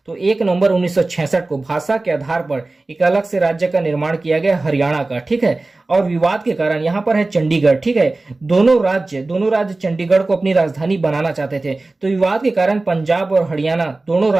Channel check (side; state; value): left; quieter; 3.2 dB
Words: तो 1 नवंबर 1966 को भाषा के आधार पर एक अलग से राज्य का निर्माण किया गया हरियाणा का। ठीक है, और विवाद के कारण यहाँ पर है चंडीगढ़। ठीक है, दोनों राज्य चंडीगढ़ को अपनी राजधानी बनाना चाहते थे। तो विवाद के कारण पंजाब और हरियाणा दोनों